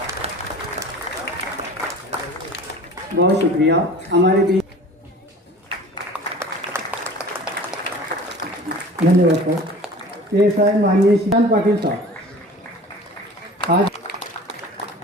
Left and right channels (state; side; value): normal; both; correlation 0.42